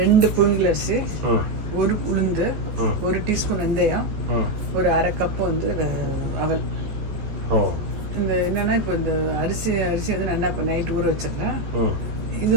புழுங்கல் அரிசி, 1 உளுந்து, 1 டீஸ்பூன் வெந்தயம், ஒரு 1/2 கப் வந்து அவல். இந்த என்னன்னா இப்போ இந்த அரிசி வந்து நல்லா இப்போ நைட் ஊற வச்சிருக்கேன். இது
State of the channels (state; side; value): late; left; 14 ms